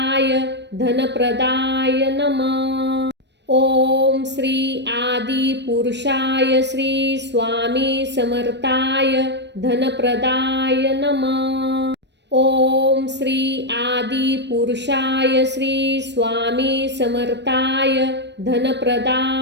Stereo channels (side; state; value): left; late; 0.50 ms